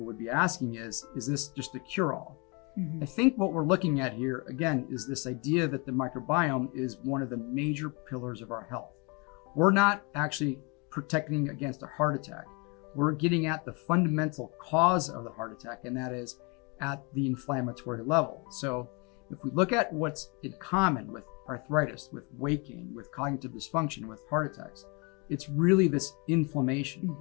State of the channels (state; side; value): quieter; right; 30.9 dB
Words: would be asking is this just a cure-all? Mm-hmm. I think what we're looking at here, again, is this idea that the microbiome is one of the major pillars of our health. We're not actually protecting against a heart attack. We're getting at the fundamental cause of the heart attack, and that is at the inflammatory level. So if we look at what's in common with arthritis, with weight gain, with cognitive dysfunction, with heart attacks, it's really this inflammation.